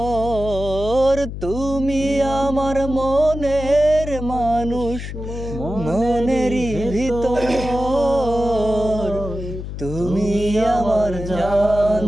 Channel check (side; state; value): left; noise; hum, 8 dB below the sound